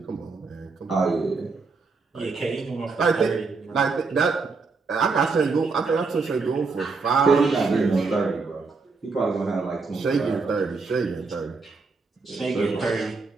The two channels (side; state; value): left; quieter; 4.3 dB